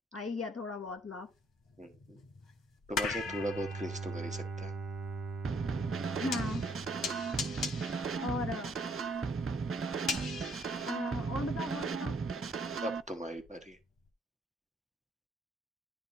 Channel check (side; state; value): both; normal; correlation 0.66